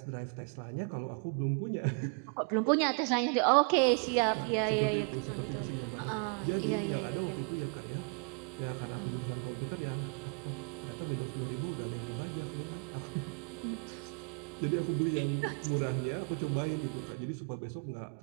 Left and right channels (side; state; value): left; quieter; 39.6 dB